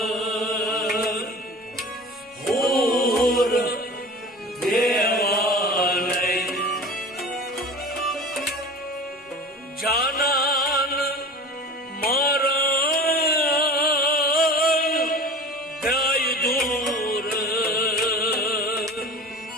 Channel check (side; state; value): both; normal; correlation 0.37